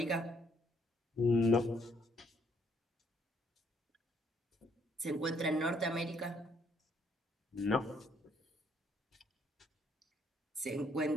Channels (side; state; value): both; normal; correlation 0.68